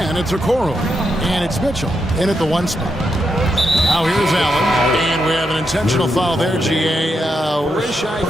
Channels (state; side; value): normal; both; correlation 0.83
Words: it's Okoro. And it's Mitchell in at the 1 spot. Now here's Allen. And we have an intentional foul there, GA. Wish I